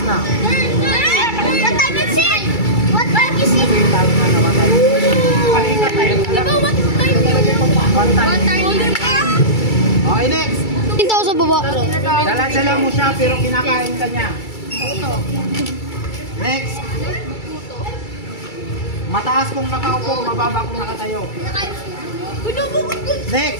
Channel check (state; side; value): late; right; 2.3 ms